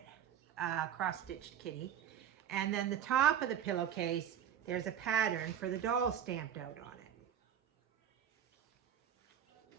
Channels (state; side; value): quieter; left; 9.4 dB